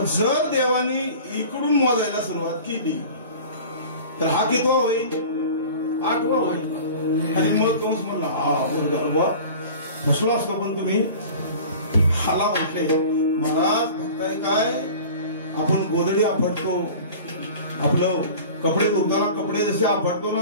जर देवानी इकडून मोजायला सुरुवात केली तर हा कितवा होईल? 8वा होईल. आणि मग कंस म्हणला हा फसलो असतो पण तुम्ही हाला म्हटले महाराज बघताय काय आपण गोदडी आपटतो आपलं कपडे धुताना कपडे जसे आपटतो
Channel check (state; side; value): inverted; both; correlation -0.40